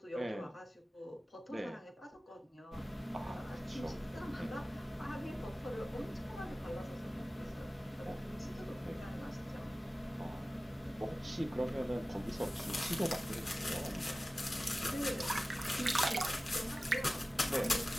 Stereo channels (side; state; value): both; normal; correlation 0.97